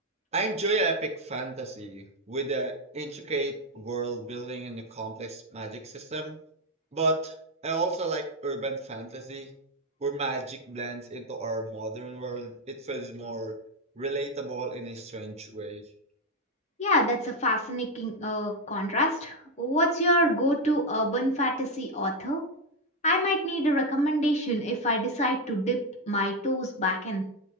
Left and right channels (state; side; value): normal; both; correlation 0.06